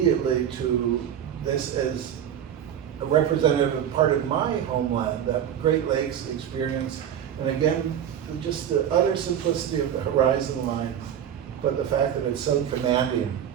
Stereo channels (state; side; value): quieter; left; 9.6 dB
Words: to this as a representative part of my homeland, that Great Lakes experience. And again, just the utter simplicity of the horizon line, but the fact that it's so commanding